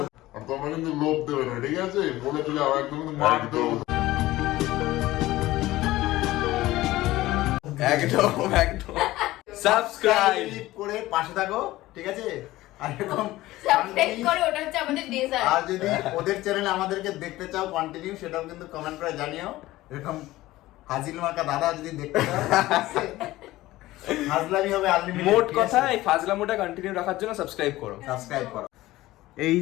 আর তোমরা কিন্তু লোভ দেবে না, ঠিক আছে। বলে দিলে আবার একদম কিন্তু মার দেবো। একদম একদম সাবস্ক্রাইব করে পাশে থাকো, ঠিক আছে। আর এরকম সাবস্ক্রাইব করে, ওটা হচ্ছে আমাদের ডেজার্ট। আর যদি ওদের চ্যানেলে আমাদেরকে দেখতে চাও কন্টিনিউ, সেটাও কিন্তু কমেন্ট করে জানিও। এরকম হাজিল মার্কা দাদা যদি দেখতে চাও, হাজলামি হবে আনলিমিটেড। মোট কথা, এই ফাজলামোটা কন্টিনিউ রাখার জন্য সাবস্ক্রাইব করো। সাবস্ক্রাইব করো। এই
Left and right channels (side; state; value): right; quieter; 17.2 dB